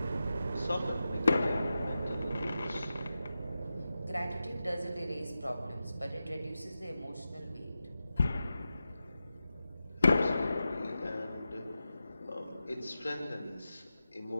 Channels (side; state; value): both; inverted; correlation -0.92